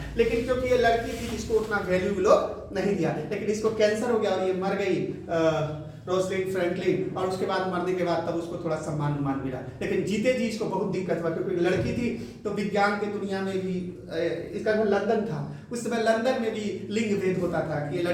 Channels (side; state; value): both; identical; correlation 1.00